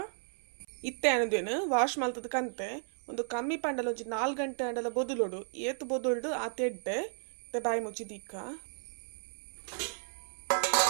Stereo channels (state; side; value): silent; left; 55 dB below the other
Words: ಇತ್ತೆ ಅನ್ನೋದೇನು ವಾಶ್ ಮಲ್ತದ ಕಂತೆ ಒಂದು ಕಮ್ಮಿ ಪಂಡಲ ಒಂಜಿ 4 ಗಂಟೆ ಅಂಡಲ ಬೊದುಲೋಡು ಏತು ಬೊದುಲ್ಡು ಆ ತೆಡ್ಡೆ ಬಾಯಿ ಮುಚ್ಚಿ ದಿಕ್ಕ